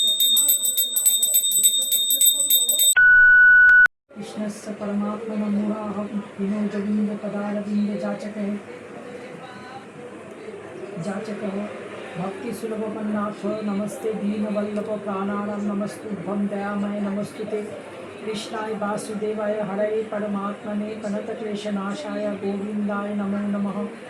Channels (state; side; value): identical; both; correlation 1.00